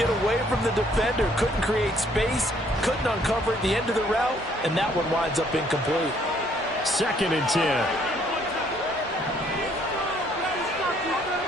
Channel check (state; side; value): normal; both; correlation 0.64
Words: away from the defender, couldn't create space, couldn't uncover at the end of the route, and that one winds up incomplete. 2nd and 10.